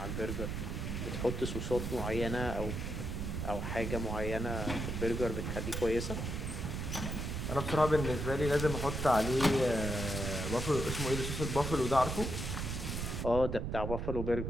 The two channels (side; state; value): right; noise; rumble, 3 dB below the sound